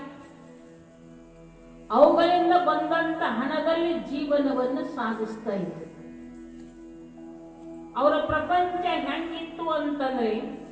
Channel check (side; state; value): both; identical; correlation 1.00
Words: ಅವುಗಳಿಂದ ಬಂದಂತ ಹಣದಲ್ಲಿ ಜೀವನವನ್ನು ಸಾಗಿಸ್ತಾ ಇದ್ರು. ಅವರ ಪ್ರಪಂಚ ಹೆಂಗಿತ್ತು ಅಂತಂದ್ರೆ